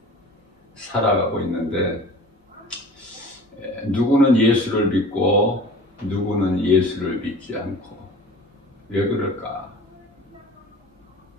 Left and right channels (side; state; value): both; normal; correlation 0.41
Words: 살아가고 있는데 누구는 예수를 믿고 누구는 예수를 믿지 않고, 왜 그럴까?